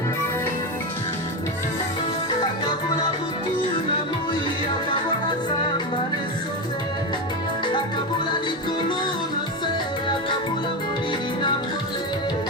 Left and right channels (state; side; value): normal; both; correlation 0.15